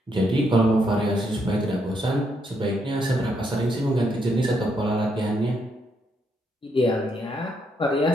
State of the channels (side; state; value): both; normal; correlation 0.76